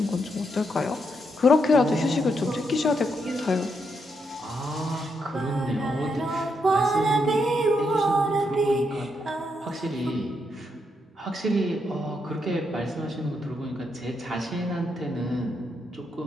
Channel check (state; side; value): normal; both; correlation 0.80